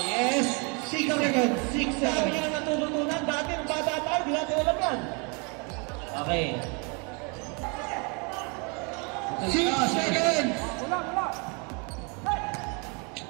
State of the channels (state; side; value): quieter; left; 33.3 dB